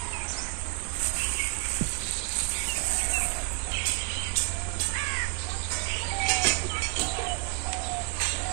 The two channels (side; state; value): left; quieter; 30.7 dB